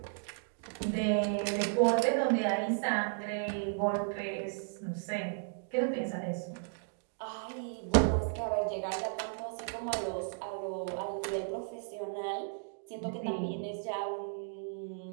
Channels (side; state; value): left; silent; digital silence